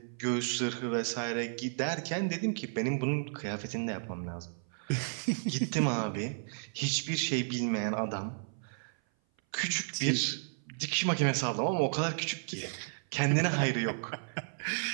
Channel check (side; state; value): left; silent; 56 dB below the other